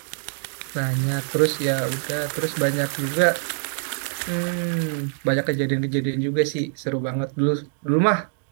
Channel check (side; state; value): left; silent; 56 dB below the other